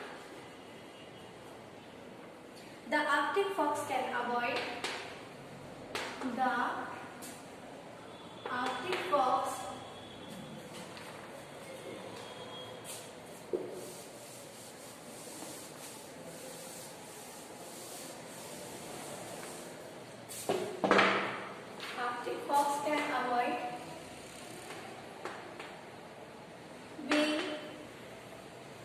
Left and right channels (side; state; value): both; identical; correlation 1.00